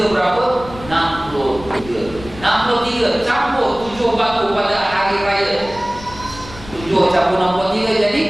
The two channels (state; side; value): noise; left; rumble, 16 dB below the sound